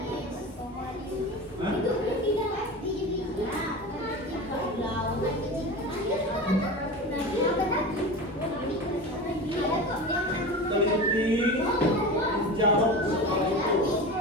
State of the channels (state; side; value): normal; both; correlation 0.29